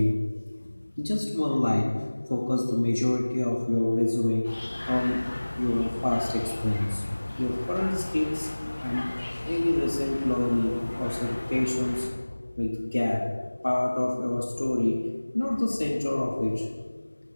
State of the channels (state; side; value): inverted; both; correlation -1.00